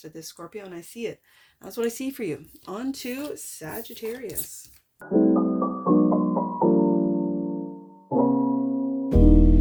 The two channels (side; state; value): both; identical; correlation 1.00